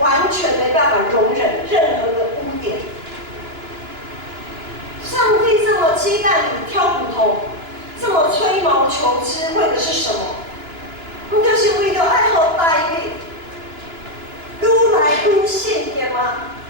没办法容忍任何的污点。上帝这么鸡蛋里挑骨头，这么吹毛求疵，为的是什么？不就是为了爱好大卫，愈来愈圣洁吗？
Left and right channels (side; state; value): left; late; 2.9 ms